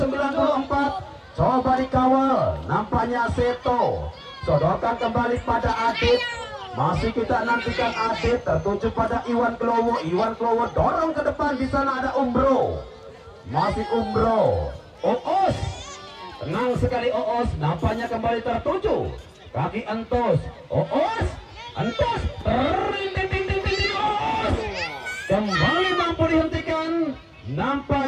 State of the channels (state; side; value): identical; both; correlation 1.00